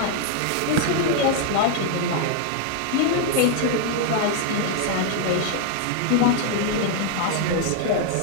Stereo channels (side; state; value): both; different; correlation 0.00